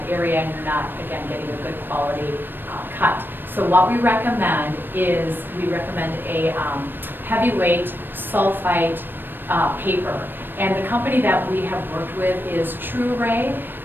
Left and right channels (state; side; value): late; left; 0.095 ms